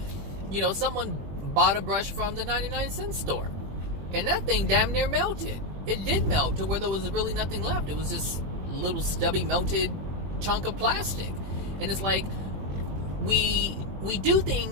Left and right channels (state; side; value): late; left; 21 ms